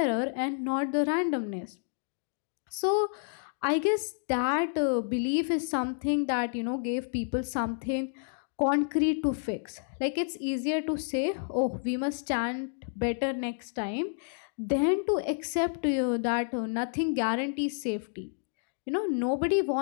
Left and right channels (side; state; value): right; silent; digital silence